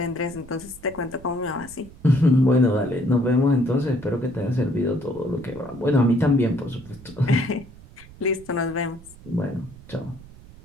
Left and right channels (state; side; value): noise; right; rumble, 20 dB below the sound